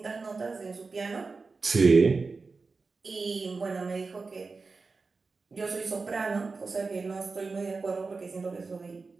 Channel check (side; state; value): left; quieter; 4.2 dB